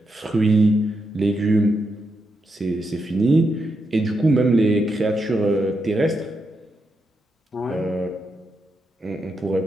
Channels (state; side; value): normal; both; correlation 0.84